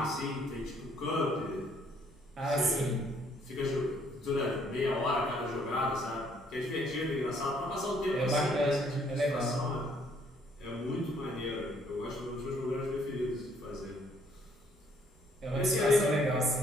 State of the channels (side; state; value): both; normal; correlation 0.65